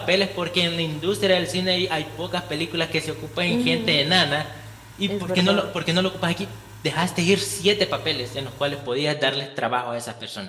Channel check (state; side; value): identical; both; correlation 1.00